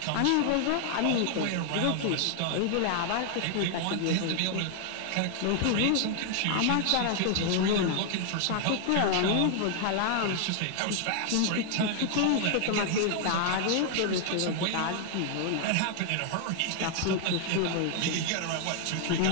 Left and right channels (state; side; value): different; both; correlation 0.00